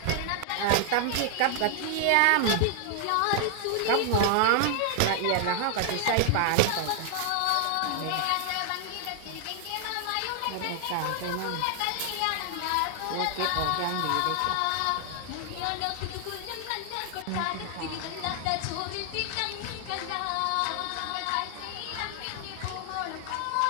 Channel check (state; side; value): different; both; correlation 0.00